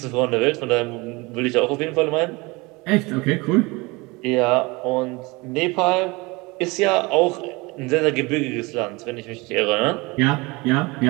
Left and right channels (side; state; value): left; quieter; 24.7 dB